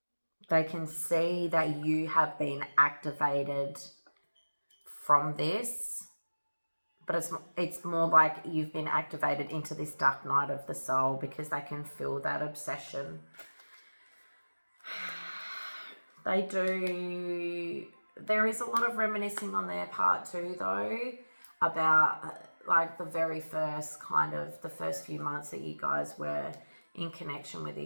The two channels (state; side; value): inverted; both; correlation -1.00